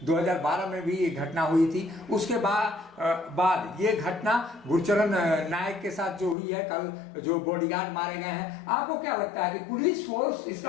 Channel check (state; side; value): drops out; right; at 6.4 s